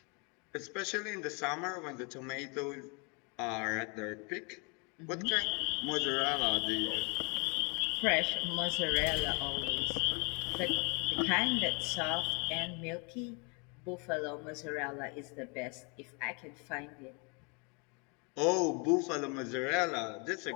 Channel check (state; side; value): quieter; right; 33.2 dB